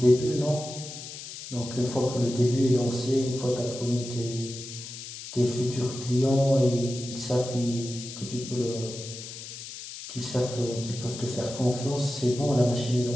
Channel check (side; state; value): left; noise; hiss, 11 dB below the sound